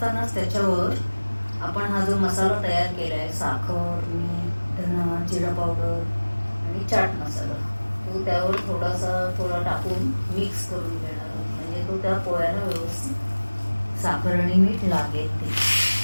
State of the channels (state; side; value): inverted; both; correlation -1.00